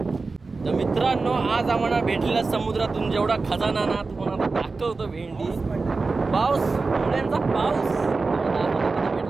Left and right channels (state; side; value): quieter; left; 4.0 dB